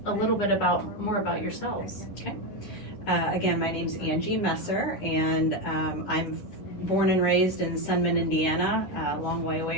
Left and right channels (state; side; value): late; right; 10 ms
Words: a little bit more about yourselves. Okay. Again, my name's Angie Messer, and I'm born and raised in Sunman, Indiana, a long way